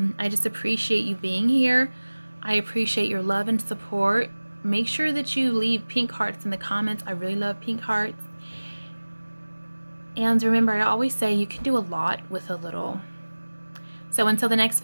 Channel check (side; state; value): both; inverted; correlation -1.00